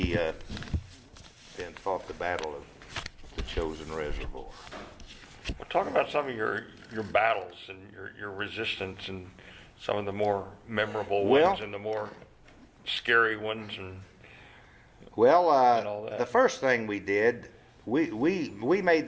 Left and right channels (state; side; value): identical; both; correlation 1.00